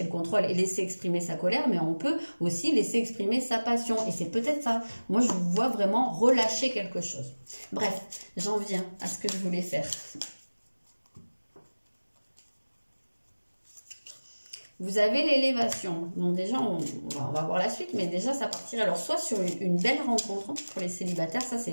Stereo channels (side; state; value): both; inverted; correlation -1.00